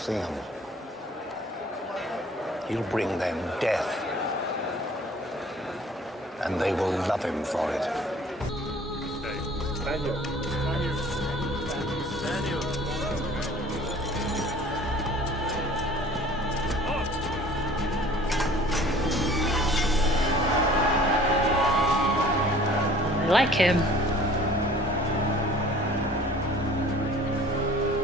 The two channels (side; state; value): both; normal; correlation 0.50